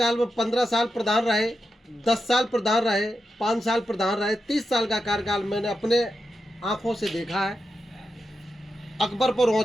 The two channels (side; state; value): both; normal; correlation 0.88